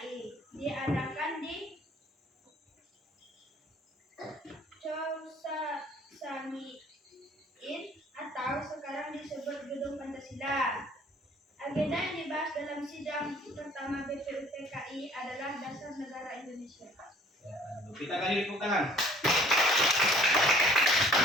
diadakan di Chosamiin atau sekarang disebut Gedung Pancasila. Agenda yang dibahas dalam sidang pertama BPUPKI adalah dasar negara Indonesia. Ya, kita kali tepuk tangan.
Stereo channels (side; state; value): both; normal; correlation 0.55